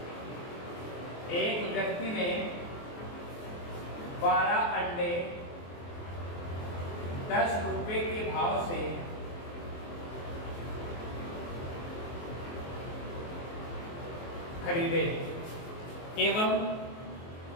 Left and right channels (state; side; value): late; right; 23 ms